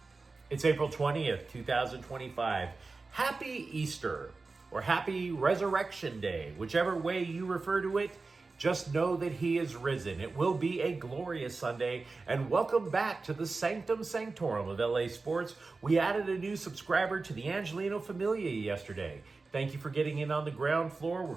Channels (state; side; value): quieter; left; 3.9 dB